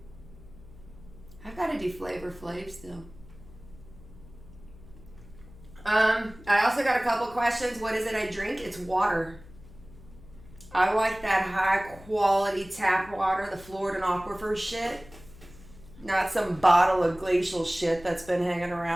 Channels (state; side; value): noise; left; hum, 20 dB below the sound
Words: I've got to do Flavor Flav still. I also got a couple questions. What is it I drink? It's water. I like that high quality tap water, the Florida Aquifer shit. Not some bottle of glacial shit that's been hanging